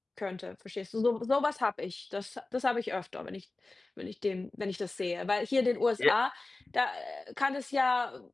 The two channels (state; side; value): quieter; right; 3.2 dB